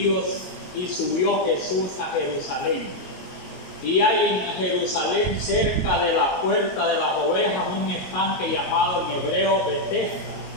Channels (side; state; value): right; late; 22 ms